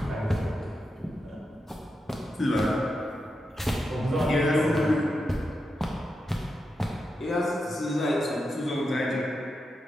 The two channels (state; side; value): normal; both; correlation 0.87